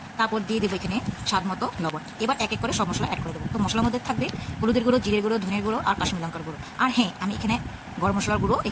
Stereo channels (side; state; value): both; identical; correlation 1.00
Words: তারপর দিয়ে দেবো এখানে স্বাদ মতো লবণ। এবার এক এক করে সব মশলা অ্যাড করে দেবো। তো মশলার মধ্যে থাকবে হলুদের গুঁড়ো, জিরের গুঁড়ো, ধনের গুঁড়ো আর কাশ্মীর লঙ্কার গুঁড়ো। আর হ্যাঁ, আমি এখানে গরম মশলার গুঁড়ো